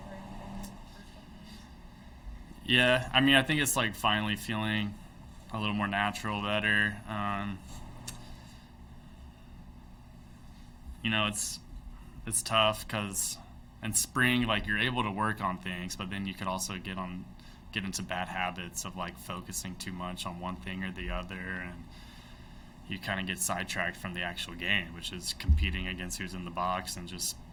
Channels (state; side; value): identical; both; correlation 1.00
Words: or anything in the first couple of years? Yeah, I mean, I think it's like finally feeling a little more natural, better. You know, it's tough because in spring, like you're able to work on things, but then you could also get into bad habits of like focusing too much on one thing or the other, and you kind of get sidetracked from the actual game, which is competing against who's in the box and just,